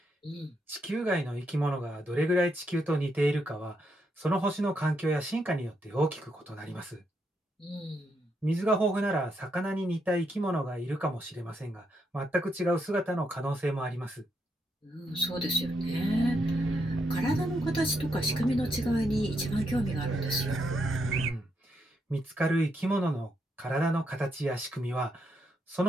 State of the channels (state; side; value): normal; both; correlation 0.79